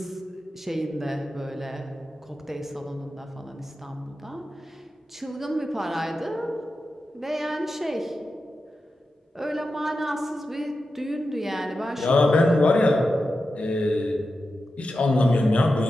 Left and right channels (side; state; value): both; normal; correlation 0.91